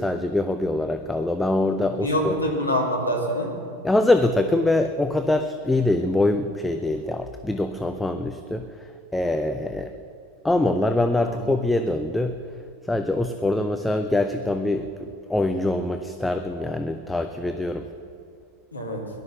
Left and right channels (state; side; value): normal; both; correlation 0.73